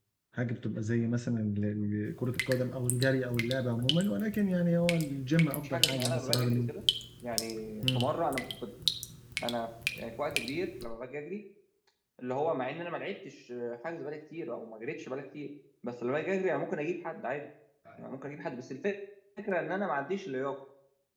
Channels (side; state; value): both; identical; correlation 1.00